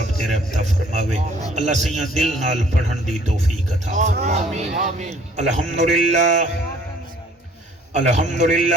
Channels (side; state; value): both; normal; correlation 0.57